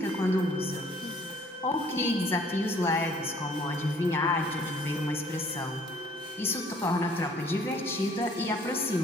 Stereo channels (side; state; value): both; normal; correlation 0.58